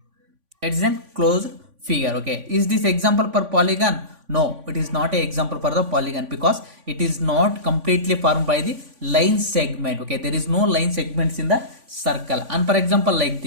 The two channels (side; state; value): left; late; 3.5 ms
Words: it is a closed figure. Okay, is this example for polygon? No, it is not a example for the polygon because it is not completely formed by the line segment. Okay, there is no line segments in the circle. And for example, like